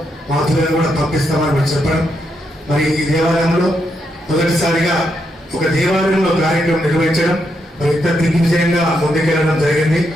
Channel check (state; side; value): normal; both; correlation 0.80